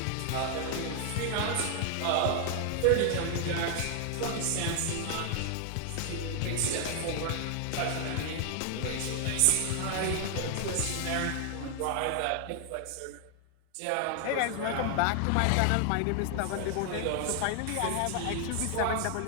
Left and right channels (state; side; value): different; both; correlation 0.00